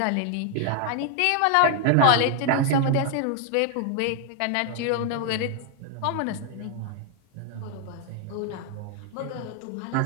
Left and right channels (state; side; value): different; both; correlation 0.01